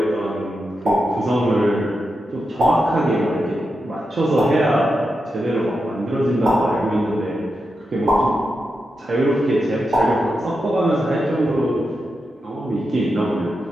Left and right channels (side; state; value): both; normal; correlation 0.87